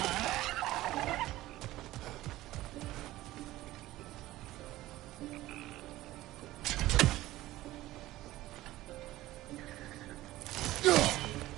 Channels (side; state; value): left; quieter; 16.4 dB